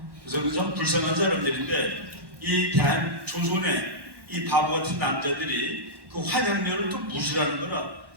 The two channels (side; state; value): left; late; 1.1 ms